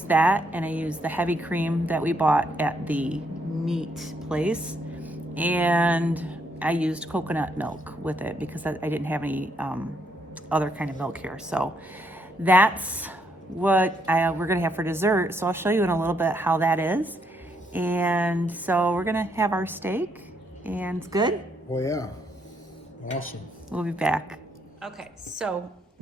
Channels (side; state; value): both; normal; correlation 0.74